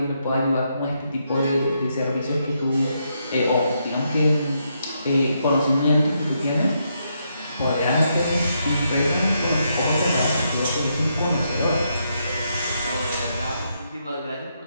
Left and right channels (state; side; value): inverted; both; correlation -0.79